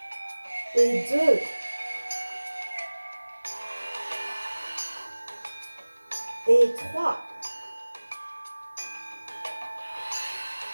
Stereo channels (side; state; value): both; inverted; correlation -1.00